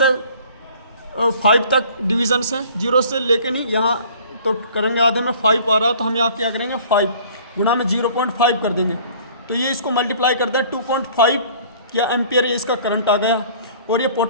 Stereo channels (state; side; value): inverted; both; correlation -0.51